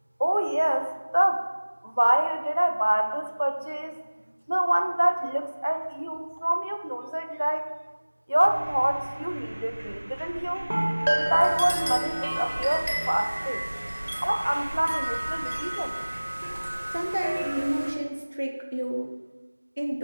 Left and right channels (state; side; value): inverted; both; correlation -1.00